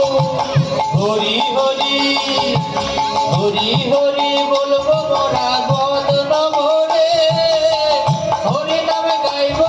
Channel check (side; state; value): both; identical; correlation 1.00